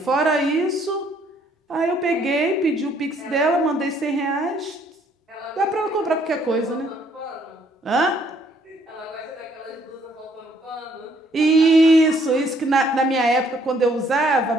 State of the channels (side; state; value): both; normal; correlation 0.65